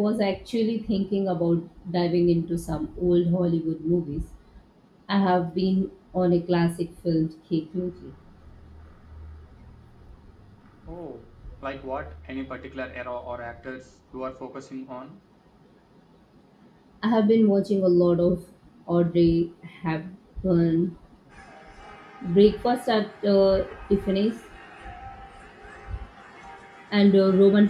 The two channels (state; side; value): identical; both; correlation 1.00